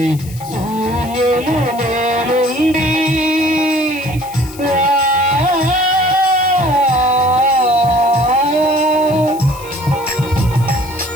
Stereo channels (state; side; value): noise; left; hiss, 18 dB below the sound